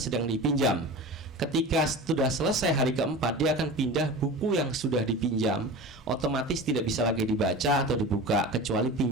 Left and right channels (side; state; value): both; normal; correlation 0.32